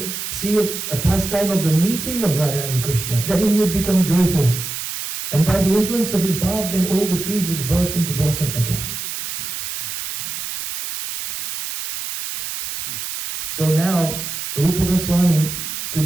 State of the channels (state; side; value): noise; right; hiss, 6 dB below the sound